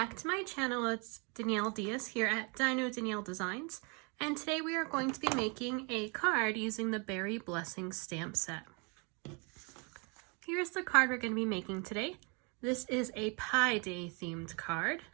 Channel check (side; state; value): left; quieter; 33.0 dB